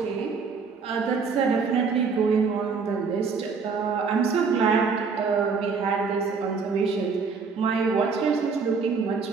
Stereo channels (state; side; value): quieter; left; 5.1 dB